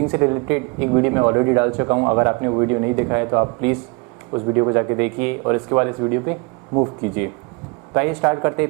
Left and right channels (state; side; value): quieter; left; 30.2 dB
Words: से रिलेटेड एक वीडियो मैं ऑलरेडी डाल चुका हूं। अगर आपने वो वीडियो नहीं देखा है तो आप प्लीज़ उस वीडियो को जाके देखिए और इसके बाद इस वीडियो पे मूव कीजिए। तो आइए स्टार्ट करते